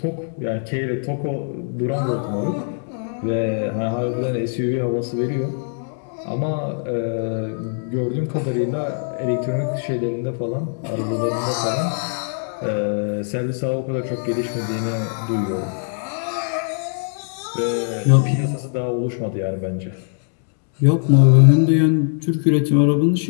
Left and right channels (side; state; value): right; silent; 64 dB below the other